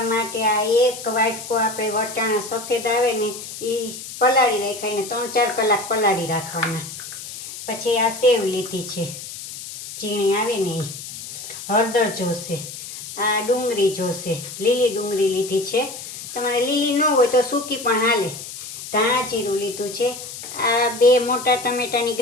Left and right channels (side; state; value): left; noise; hiss, 11 dB below the sound